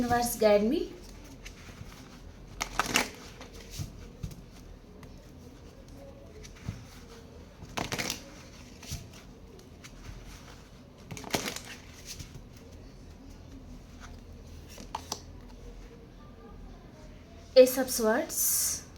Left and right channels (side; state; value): both; identical; correlation 1.00